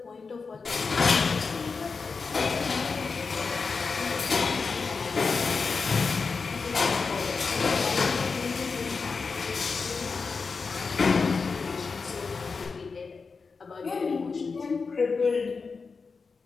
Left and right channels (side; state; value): right; quieter; 4.8 dB